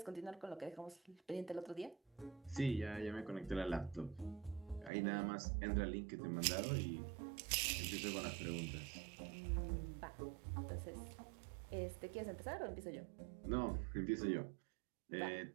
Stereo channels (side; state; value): left; drops out; at 4.9 s